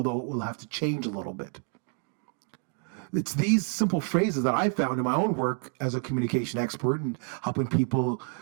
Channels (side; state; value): left; quieter; 38.1 dB